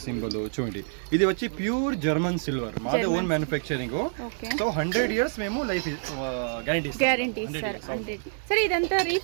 సింబల్ చూడండి. ఇది వచ్చి ప్యూర్ జర్మన్ సిల్వర్, మాదే ఓన్ మ్యానుఫ్యాక్చరింగ్. సో 100 years మేము లైఫ్ గ్యారంటీ ఇస్తారు. సరే, ఇదంతా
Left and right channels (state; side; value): silent; left; digital silence